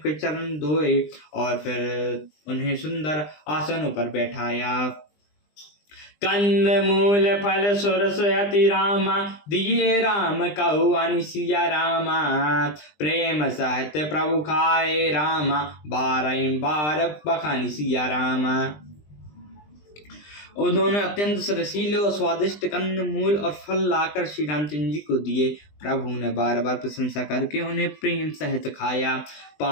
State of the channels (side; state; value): right; late; 20 ms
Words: चरण धोए और फिर उन्हें सुंदर आसनों पर बैठाया। कंद मूल फल सुरस अति रामा, दिए राम कहु अनि सिया रामा। प्रेम सहित प्रभु खाए रामा, बार बखानी सिया रामा। उन्होंने अत्यंत रसीले और स्वादिष्ट कंद मूल और फल लाकर श्री रामचंद्र जी को दिए। प्रभु ने बार बार प्रशंसा करके उन्हें प्रेम सहित खाया।